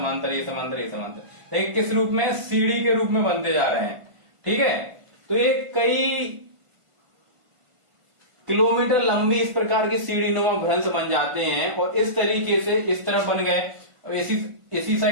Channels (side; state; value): left; late; 1.5 ms